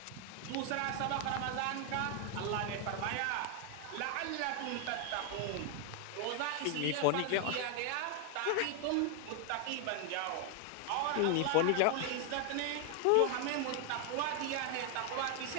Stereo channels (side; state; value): both; different; correlation 0.01